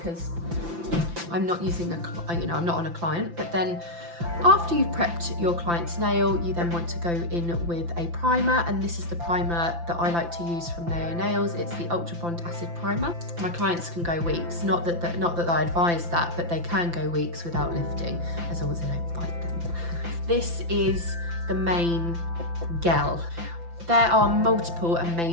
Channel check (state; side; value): late; left; 5.9 ms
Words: I'm not using I'm not on a client, but then after you've prepped your client's nail, you then want to go in with a primer, and this is the primer that I like to use from Naio Nails. It's the Ultra Bond Acid Primer. My clients can go weeks, not that I advise that, but they can go weeks without lifting, as long as they don't bite them. This is the main gel. There are multiple